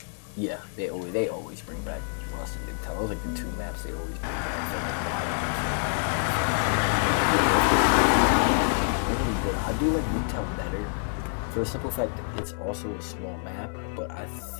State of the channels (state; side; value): silent; right; 60 dB below the other